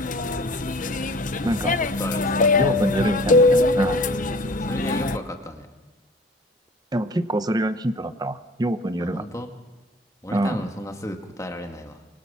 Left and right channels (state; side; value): normal; both; correlation 0.46